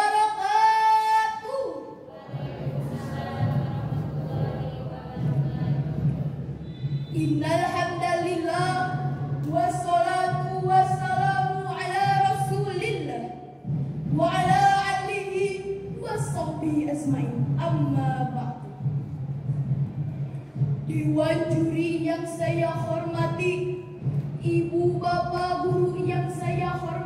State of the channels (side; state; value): both; identical; correlation 1.00